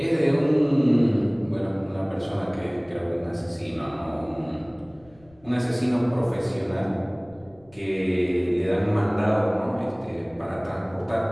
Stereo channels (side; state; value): left; noise; rumble, 28 dB below the sound